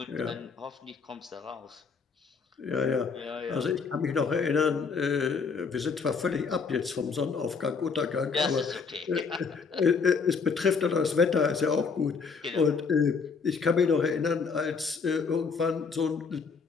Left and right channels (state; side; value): quieter; right; 5.2 dB